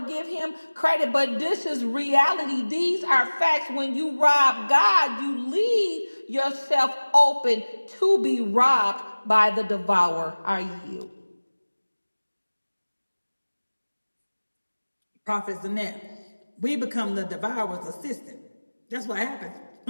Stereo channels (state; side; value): inverted; both; correlation -1.00